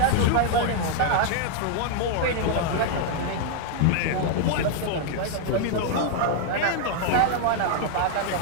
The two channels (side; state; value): both; different; correlation 0.00